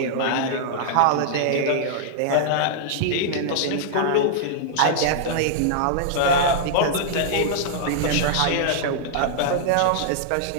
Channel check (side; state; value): both; different; correlation -0.01